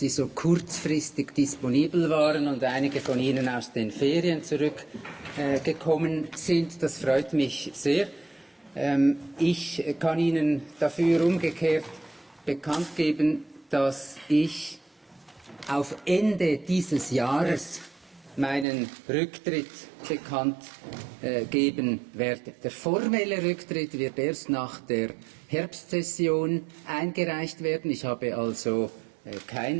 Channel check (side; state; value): left; drops out; at 18.7 s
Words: so kurzfristig disponibel waren und einige von Ihnen aus den Ferien zurückgekommen sind. Das freut mich sehr. Ich kann Ihnen dafür umgekehrt bekannt geben, dass ich auf Ende dieses Jahres meinen Rücktritt bekannt geben werde. Der formelle Rücktritt wird erst nach der Herbstsession eingereicht werden. Ich habe also